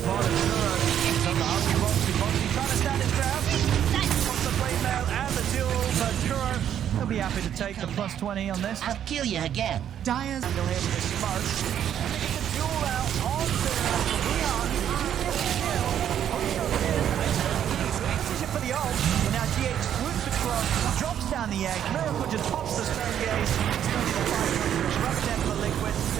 bottom, Kuro is on the hungry Boxy. Boxy trying to stand his ground. Wants the blade mail and the duel, but Kuro will be happy to take the plus 20 on this. I'll kill you again. Dyer's Still here with the smoke. And they get the duel out onto Weehaw. For the ult, and now GH swoops across, drops down the egg. Miracle just pops the stone gaze. It's going to be the fight. Disrupt them for Liquid.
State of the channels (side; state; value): left; quieter; 9.8 dB